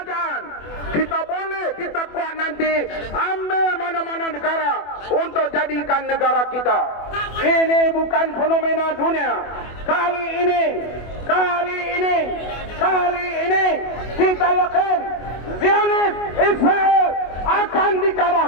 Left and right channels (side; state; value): right; late; 24 ms